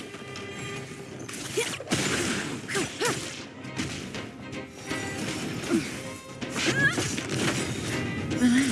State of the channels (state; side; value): identical; both; correlation 1.00